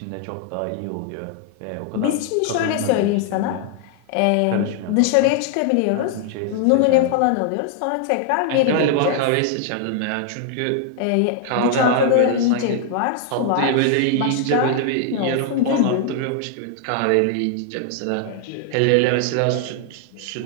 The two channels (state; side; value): different; both; correlation 0.00